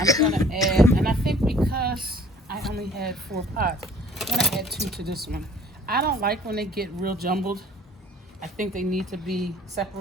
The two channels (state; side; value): normal; both; correlation 0.53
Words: gonna add, and I think because I only had 4 pots, I'm gonna add 2 to this one. I don't like when they get real jumbled. I think they need to be